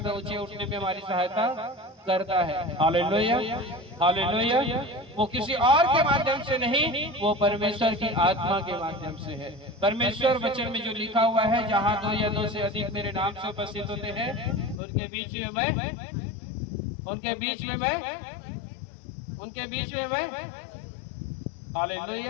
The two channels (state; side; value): drops out; right; at 14.8 s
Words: ऊंचे उठने में हमारी सहायता करता है। Hallelujah hallelujah. वो किसी और के माध्यम से नहीं, वो परमेश्वर की आत्मा के माध्यम से है। परमेश्वर वचन में जो लिखा हुआ है, जहाँ 2 या 2 से अधिक मेरे नाम से उपस्थित होते हैं, उनके बीच में मैं, उनके बीच में मैं, उनके बीच में मैं।